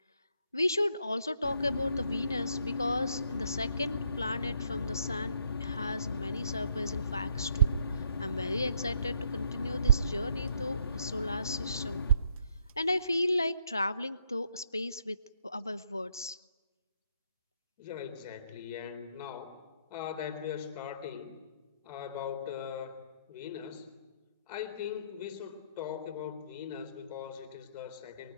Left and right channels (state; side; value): inverted; both; correlation -0.71